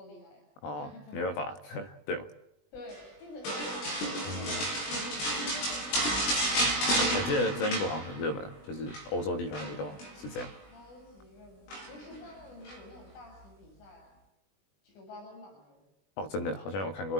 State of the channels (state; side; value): late; right; 20 ms